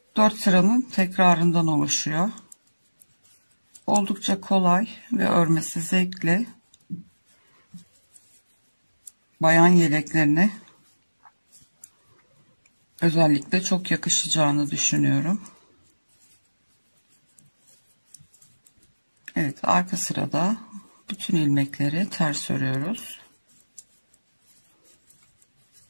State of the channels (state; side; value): inverted; both; correlation -1.00